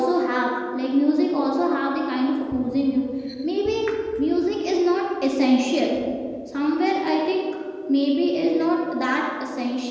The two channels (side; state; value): both; identical; correlation 1.00